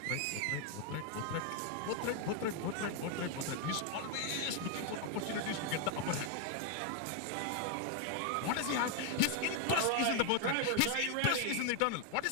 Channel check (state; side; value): different; both; correlation 0.00